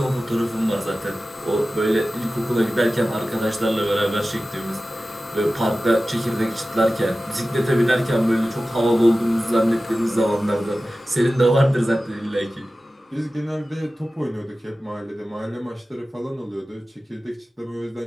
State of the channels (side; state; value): both; normal; correlation 0.95